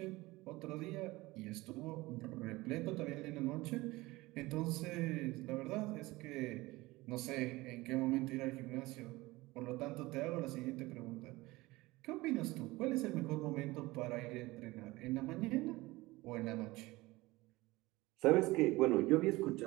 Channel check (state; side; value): quieter; left; 20.5 dB